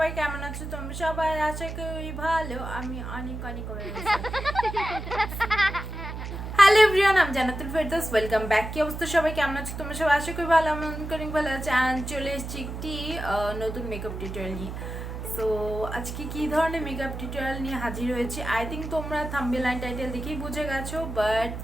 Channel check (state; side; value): noise; right; hum, 7 dB below the sound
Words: কেমন আছো তোমরা সবাই? আশা করি ভালো। আমি অনেক অনেক হ্যালো এভরিওয়ান, আমি জান্নাতুল ফেরদৌস ওয়েলকাম ব্যাক। কি অবস্থা সবাই, কেমন আছো তোমরা সবাই? আশা করি ভালো। আমি অনেক ভালো আছি। অ্যান্ড চলে এসেছি একটি নতুন মেকআপ টিউটোরিয়াল নিয়ে। সো আজকে কী ধরনের মেকআপ টিউটোরিয়াল নিয়ে হাজির হয়েছি, আই থিঙ্ক তোমরা থাম্বনেল অ্যান্ড টাইটেল দেখেই বুঝে গেছো, বাট